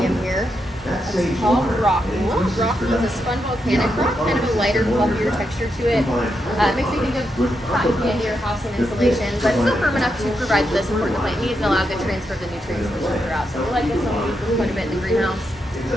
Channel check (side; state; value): both; normal; correlation 0.83